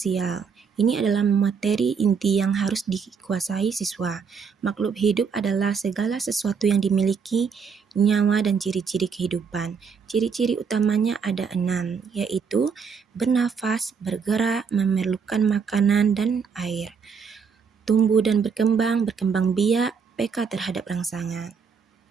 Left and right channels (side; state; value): left; quieter; 6.0 dB